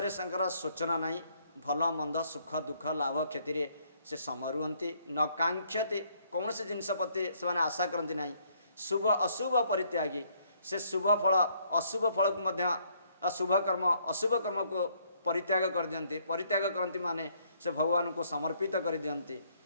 संकर सोचना नहीं भल मंद सुख दुख लाभ क्षति से समय रुहति न कांक्षति कौन से जिनस प्रति से माने आशा करती नहीं शुभ अशुभ परित्यागी से शुभ फल अशुभ फल को मध्य अशुभ कर्म अशुभ कर्म को परित्याग कर दियंती परित्याग करती माने से भगवान को समर्पित कर दियंती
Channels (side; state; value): both; inverted; correlation -0.67